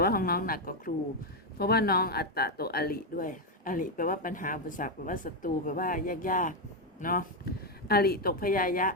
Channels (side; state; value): both; normal; correlation 0.05